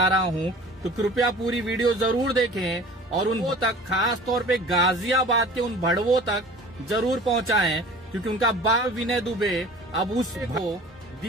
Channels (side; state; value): both; normal; correlation 0.43